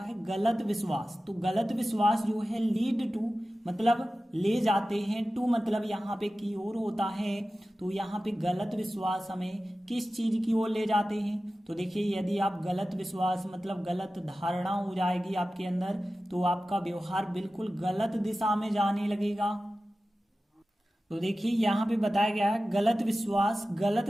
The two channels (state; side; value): normal; both; correlation 0.95